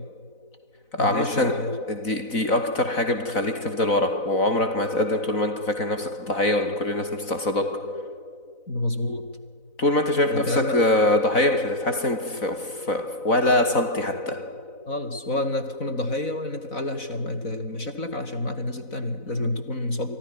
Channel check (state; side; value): late; right; 4.0 ms